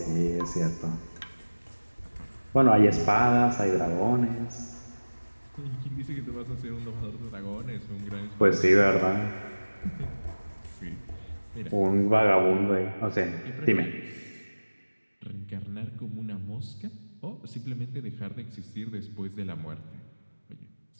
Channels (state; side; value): inverted; both; correlation -1.00